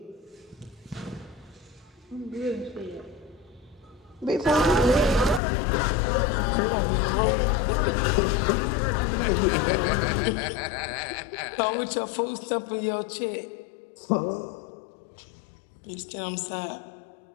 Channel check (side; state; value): right; drops out; at 5.4 s